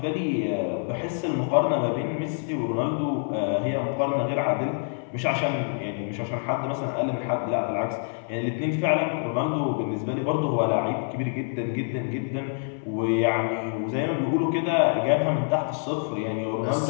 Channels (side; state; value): right; silent; 61 dB below the other